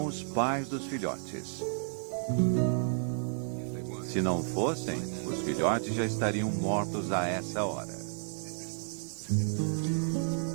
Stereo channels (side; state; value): left; silent; digital silence